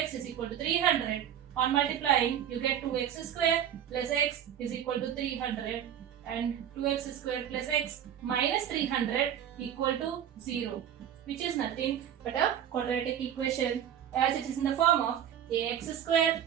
is equal to 300. On multiplying, you get 2x square plus x is equal to 300, and 2x square plus x minus 300 equal to 0, which is nothing but a quadratic equation, as it is in the form of ax square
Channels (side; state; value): left; quieter; 9.8 dB